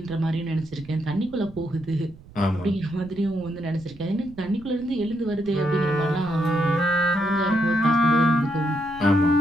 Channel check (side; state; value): right; noise; rumble, 21 dB below the sound